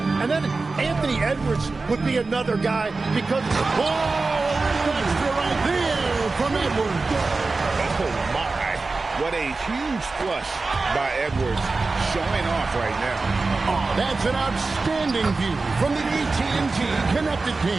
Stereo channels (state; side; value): quieter; left; 3.8 dB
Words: And then Anthony Edwards would be another guy because... Oh, a little extra right there from Edwards. Oh, my. What a huge flush by Edwards showing off right now. Oh, that's an outstanding view from the AT&T Connected